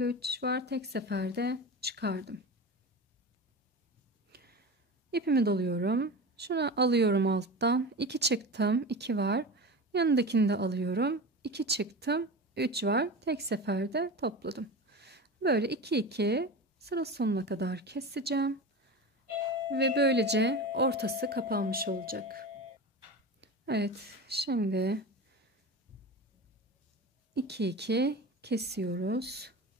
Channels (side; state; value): both; normal; correlation 0.28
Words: 3 var, tek seferde çıkardım. İpimi doluyorum, şunu alıyorum alttan, 2 çıktım, 2 var, yanındakini de alıyorum, 2 çıktım, 3 var, tek seferde topladım. Böyle 2 2 sıra sonuna kadar keseceğim ve böylece ortası kapanmış olacak. Evet, şimdi 2 2 kesiyoruz.